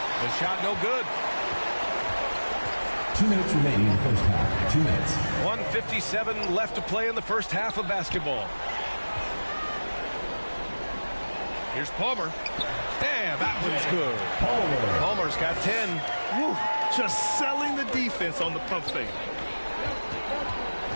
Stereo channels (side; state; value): both; inverted; correlation -1.00